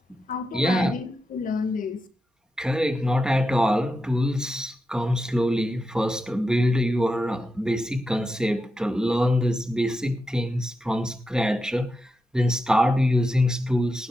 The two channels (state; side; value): normal; both; correlation 0.88